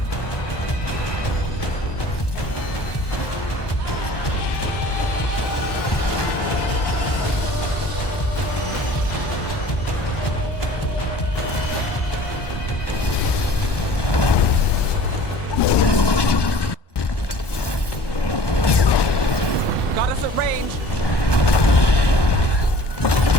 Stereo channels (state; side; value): late; right; 1.2 ms